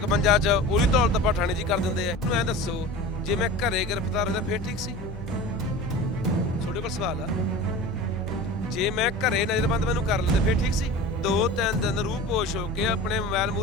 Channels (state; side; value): normal; both; correlation 0.35